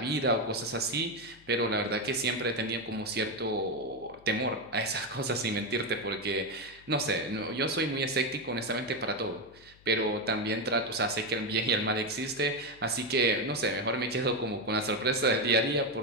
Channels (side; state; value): left; noise; hum, 26 dB below the sound